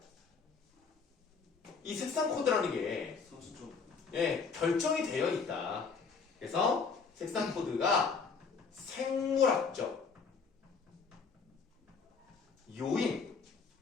이 색상 코드라는 게 선수적. 예, 결정이 되어 있다. 그래서 색상 코드가 생물학적 요인,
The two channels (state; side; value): quieter; right; 5.2 dB